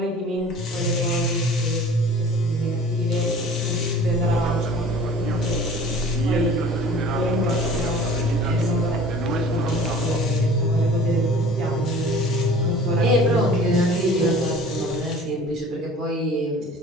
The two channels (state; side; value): normal; both; correlation 0.45